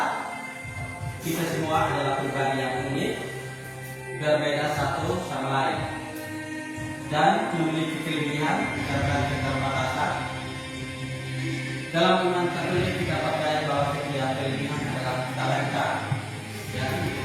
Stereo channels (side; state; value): both; identical; correlation 1.00